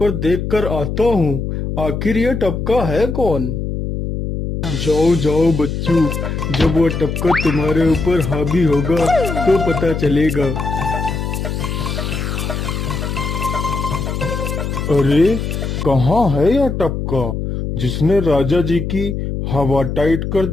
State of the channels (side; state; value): left; noise; hum, 3 dB below the sound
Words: देखकर आता हूँ। आखिर ये टपका है कौन? जाओ बच्चों, जब वो टपका तुम्हारे ऊपर हावी होगा तो पता चलेगा। अरे कहाँ है यह टपका जिसने राजा जी की हवा टाइट कर